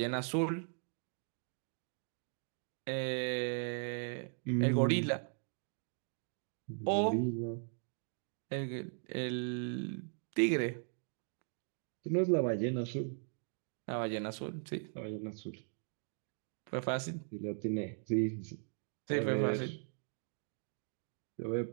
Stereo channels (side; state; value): left; silent; 52 dB below the other